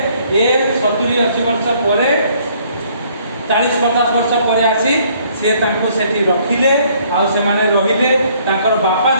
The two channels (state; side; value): inverted; both; correlation -0.63